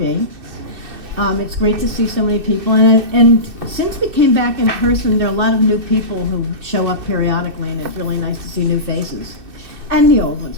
It's great to see so many people, and since we came back in person, there are a lot of new people who show up periodically, and it's really nice to see new faces, and the old ones,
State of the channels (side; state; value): left; late; 2.6 ms